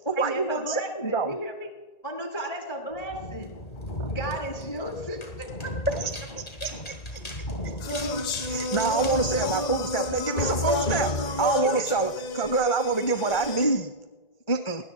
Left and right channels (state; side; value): late; right; 1.8 ms